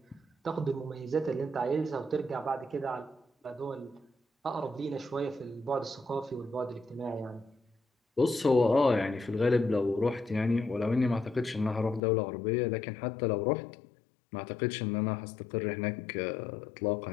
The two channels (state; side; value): drops out; right; at 12.0 s